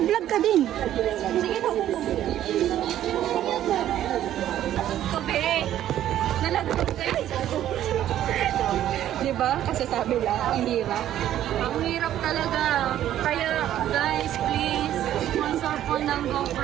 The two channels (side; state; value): left; quieter; 12.0 dB